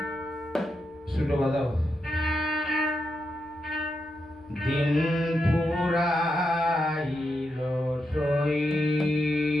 শুরু বাজাও। দিন ফুরাইল সই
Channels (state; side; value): noise; right; rumble, 29 dB below the sound